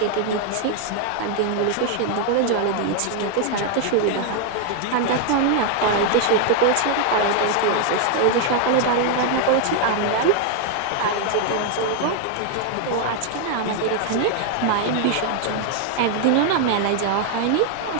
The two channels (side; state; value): both; different; correlation 0.00